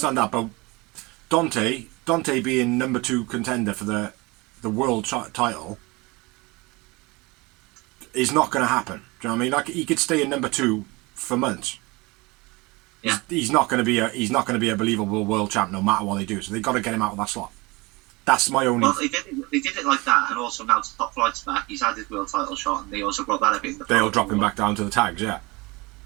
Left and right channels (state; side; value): quieter; left; 24.5 dB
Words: that. But Dante being number 2 contender for the world title is not going to happen. Do you know what I mean? Like, he could stay in number 2 for months. Yeah. He's not going to be a believable world champ no matter what they do. So they've got to get him out of that slot. That's my only. Well, they did it like that, and also now Top Flight's back. He's had his world title shot, and they also brought that up in the. They'll drop him back down to the tags. Yeah.